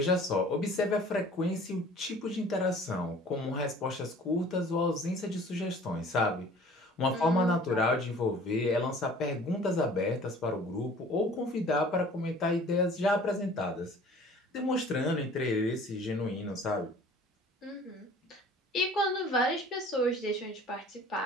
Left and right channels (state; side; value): normal; both; correlation 0.49